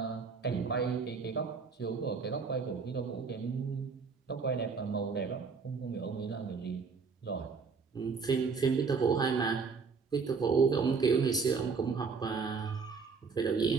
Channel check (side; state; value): left; quieter; 5.1 dB